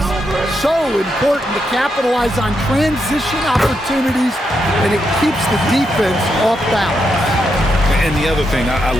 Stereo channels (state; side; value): normal; both; correlation 0.82